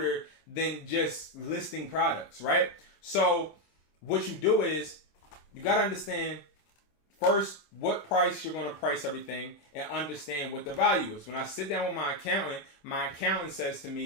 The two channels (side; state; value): right; late; 26 ms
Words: than just listing products, right? So what you do is you got to understand first what price you're going to price everything and understand what the value is. When I sit down with my accountant says to